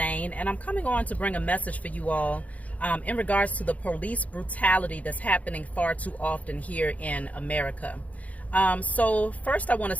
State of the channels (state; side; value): late; right; 0.070 ms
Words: and I'm coming on to bring a message for you all in regards to the police brutality that's happening far too often here in America. So first I want to